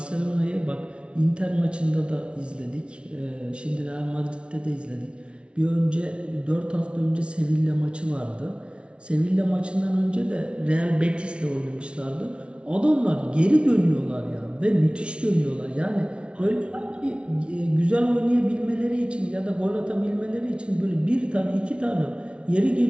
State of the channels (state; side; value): late; left; 0.058 ms